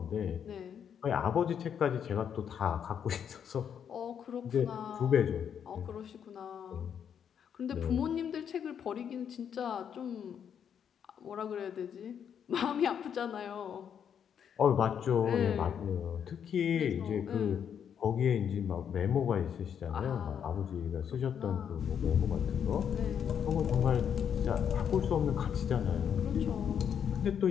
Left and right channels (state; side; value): quieter; right; 8.2 dB